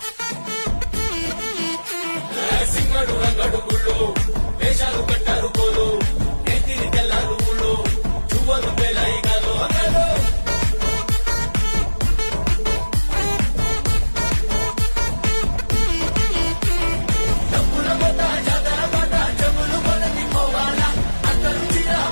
సింగడు రంగడు గుళ్ళు వేషాలు కట్టారు పోలు ఎత్తిని తెల్లారు ఊళ్ళు చువ్వలు పేలాయి గాలో గాలో డబ్బుల మొత్త జాతర పాట జములు మొదటి పోవాలా అందరూ చీర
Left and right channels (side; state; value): both; inverted; correlation -1.00